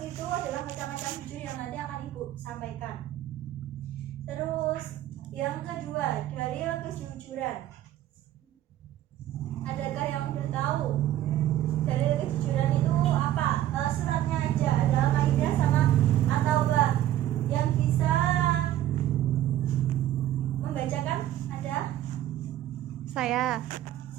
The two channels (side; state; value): left; quieter; 13.0 dB